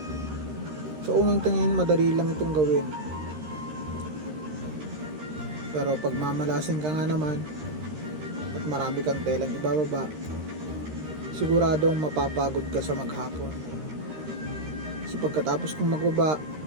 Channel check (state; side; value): late; left; 13 ms